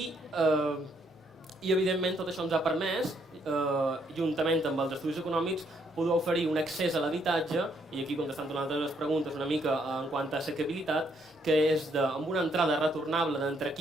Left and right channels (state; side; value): normal; both; correlation 0.71